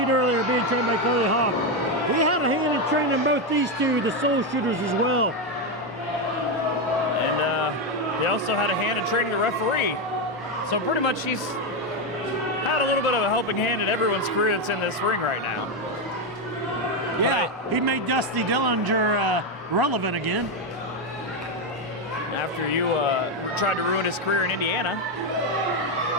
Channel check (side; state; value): both; normal; correlation 0.07